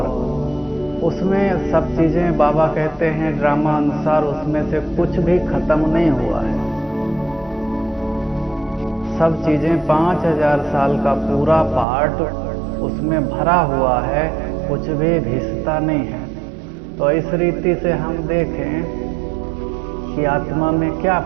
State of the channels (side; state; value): left; drops out; at 11.9 s